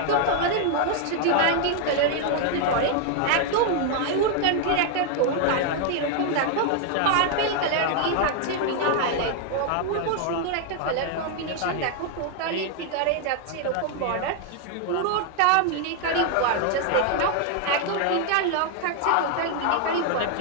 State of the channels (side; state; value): both; different; correlation 0.00